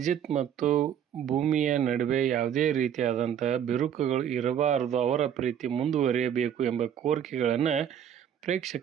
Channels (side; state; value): left; quieter; 9.2 dB